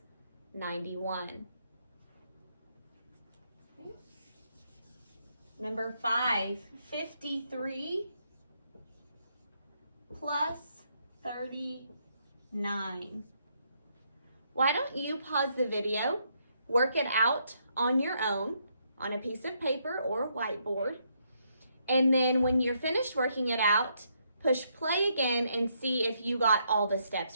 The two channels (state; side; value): inverted; both; correlation -0.75